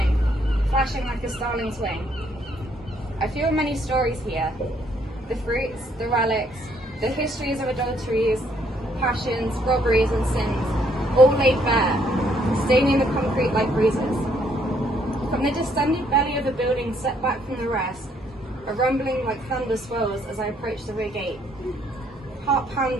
flashing like a starling's wing. I feel many stories here. The fruits, the relics, the histories of adulteries, passions, robberies and sins, all laid bare, staining the concrete like bruises. From the distended belly of a building set back from the rest, a rumbling like thunder swells as I approach the rear gate. Heart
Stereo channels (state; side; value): normal; both; correlation 0.68